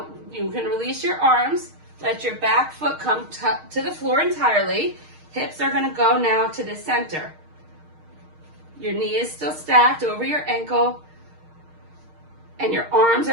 you can release your arms. Let your back foot come to the floor entirely. Hips are going to go now to the center. Your knee is still stacked over your ankle. And your arms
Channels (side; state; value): left; late; 6.5 ms